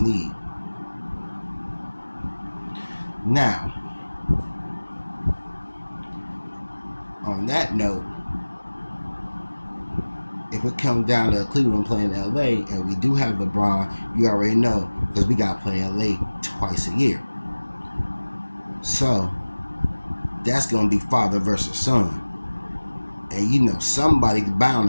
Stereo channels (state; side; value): inverted; both; correlation -1.00